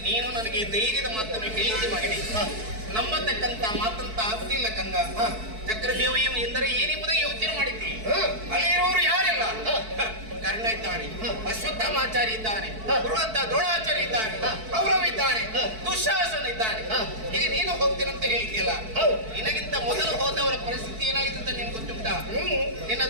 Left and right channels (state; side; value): late; left; 4.6 ms